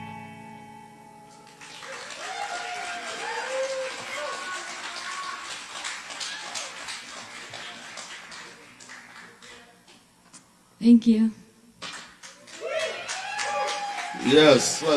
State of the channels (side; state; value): both; identical; correlation 1.00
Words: Thank you. Yes,